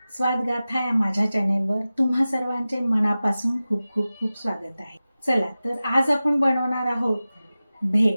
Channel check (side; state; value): both; inverted; correlation -0.96